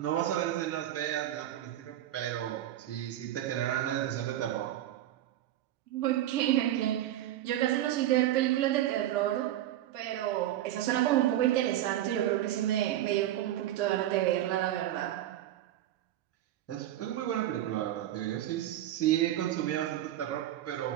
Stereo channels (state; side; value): quieter; left; 13.0 dB